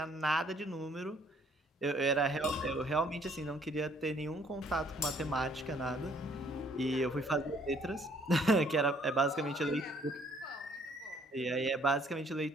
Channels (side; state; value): both; normal; correlation 0.62